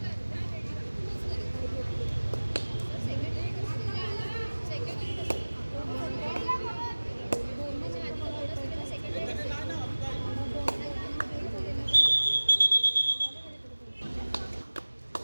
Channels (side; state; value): both; inverted; correlation -1.00